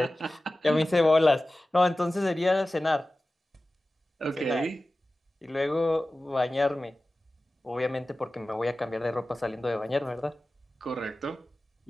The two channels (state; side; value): normal; both; correlation 0.96